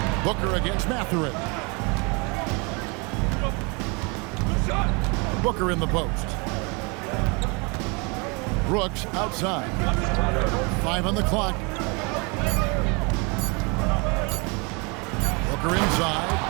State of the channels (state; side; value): quieter; left; 30.5 dB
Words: Booker against Mathurin. Booker in the post. Brooks outside. 5 on the clock. Booker